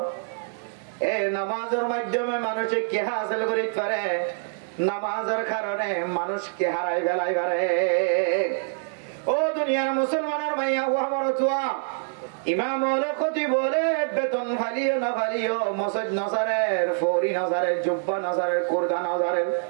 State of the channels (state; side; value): silent; left; 61 dB below the other